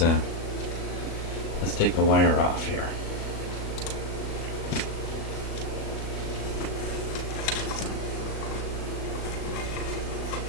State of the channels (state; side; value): late; right; 36 ms